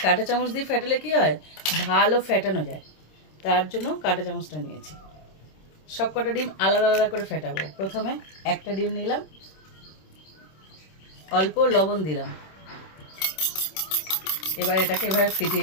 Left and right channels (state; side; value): late; right; 26 ms